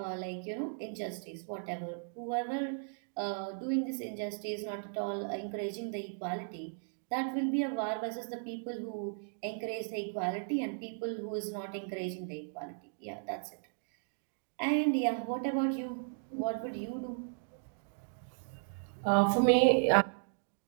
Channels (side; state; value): left; silent; digital silence